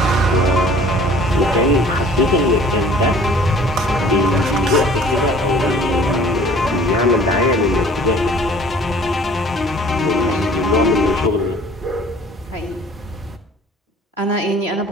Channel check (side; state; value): both; normal; correlation 0.50